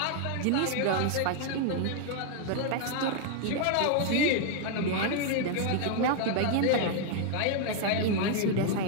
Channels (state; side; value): different; both; correlation 0.00